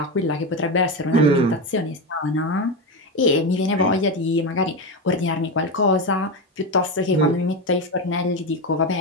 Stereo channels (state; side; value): normal; both; correlation 0.15